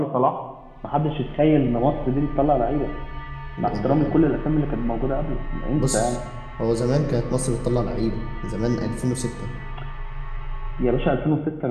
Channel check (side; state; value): both; identical; correlation 1.00